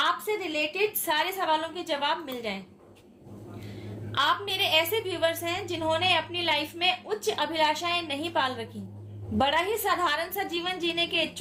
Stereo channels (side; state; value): both; identical; correlation 1.00